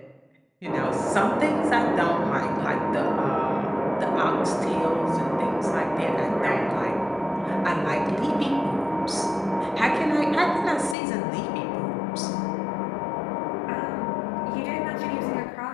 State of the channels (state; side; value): drops out; right; at 11.0 s